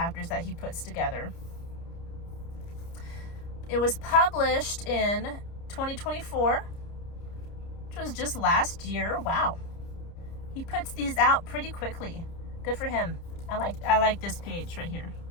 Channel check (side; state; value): right; late; 30 ms